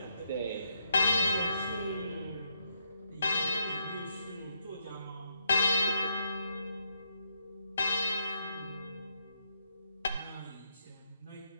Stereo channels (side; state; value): both; inverted; correlation -0.76